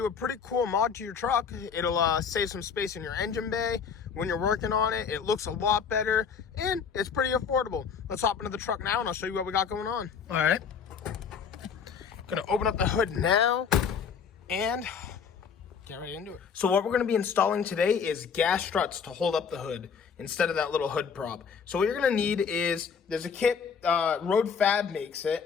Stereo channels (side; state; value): right; quieter; 6.5 dB